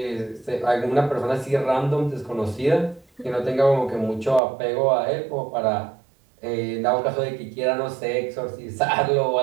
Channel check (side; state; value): left; drops out; at 4.4 s